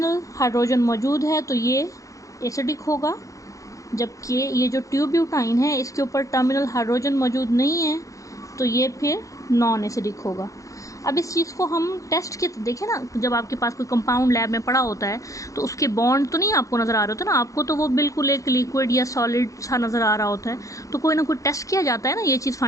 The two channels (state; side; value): late; right; 0.16 ms